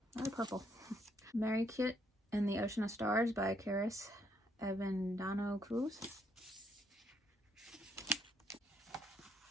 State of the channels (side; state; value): both; normal; correlation 0.70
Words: I like purple. Mary Kit and the Ocean of Stars by Karis Avendano Cruz.